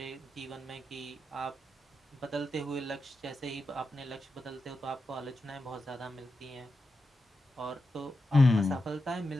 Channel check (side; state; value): both; normal; correlation 0.89